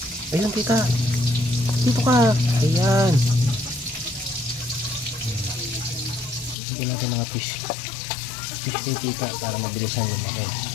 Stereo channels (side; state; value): right; drops out; at 6.6 s